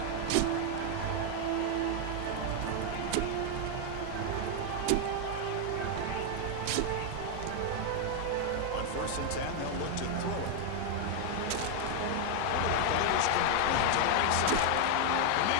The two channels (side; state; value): both; different; correlation 0.00